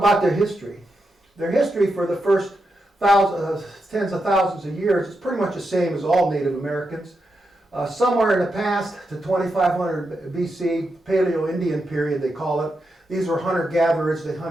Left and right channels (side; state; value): both; normal; correlation 0.86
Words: their history. Their history for the first tens of thousands of years is pretty much the same as all Native Americans. Somewhere in the past, to 2500 BC, Paleo-Indian period they call it, these were hunter-gatherers. They